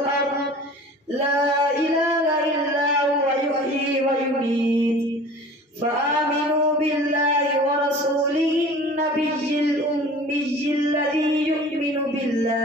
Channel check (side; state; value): both; normal; correlation 0.43